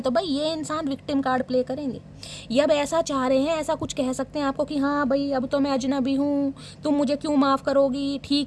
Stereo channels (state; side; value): identical; both; correlation 1.00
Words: तो भाई ये इंसान विक्टिम कार्ड प्ले करेंगे। ये अब ऐसा चाह रहे हैं, ऐसा कुछ कह सकते हैं आपको कि हाँ भाई अब तो मैं अजनबी हूँ, तुम मुझे क्यों माफ़ करोगी,